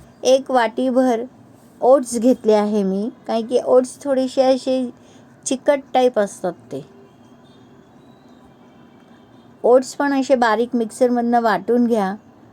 एक वाटीभर ओट्स घेतले आहे मी, कारण की ओट्स थोडेसे असे चिकट टाईप असतात. ते ओट्स पण असे बारीक मिक्सरमधनं वाटून घ्या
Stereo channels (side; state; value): both; identical; correlation 1.00